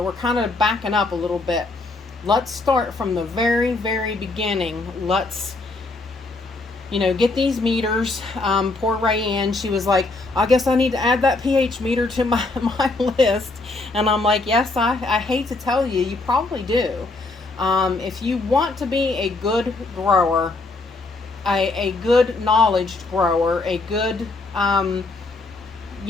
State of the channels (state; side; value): quieter; right; 3.3 dB